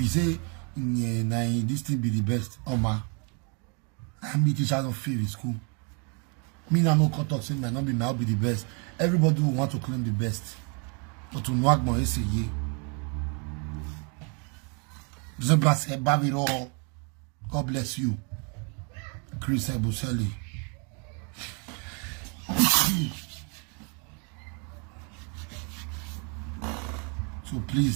say, nah, this thing be the best, Oma, I'm the teacher of favorite school. Me now no cut off saying might not be now be the best. Everybody will want to claim the best. But to knock my say yeah. God bless you. Chris Ebuseli. So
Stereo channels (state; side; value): quieter; left; 35.7 dB